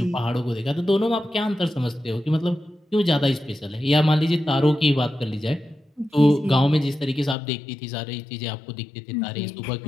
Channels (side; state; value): right; drops out; at 7.4 s